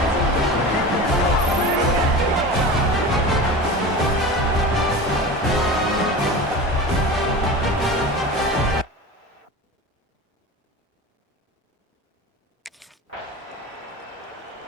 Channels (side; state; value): both; normal; correlation 0.31